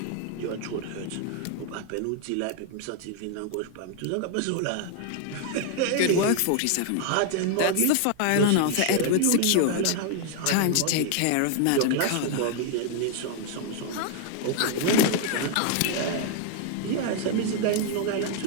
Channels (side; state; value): both; different; correlation 0.00